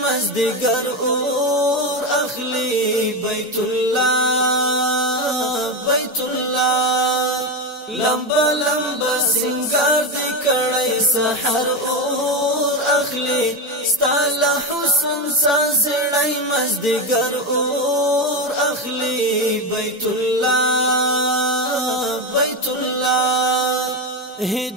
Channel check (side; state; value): both; normal; correlation 0.15